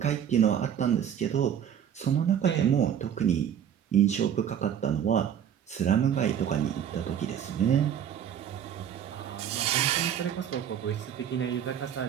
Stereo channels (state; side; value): quieter; left; 9.2 dB